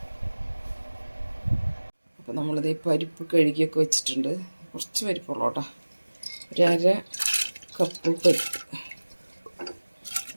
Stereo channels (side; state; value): both; inverted; correlation -1.00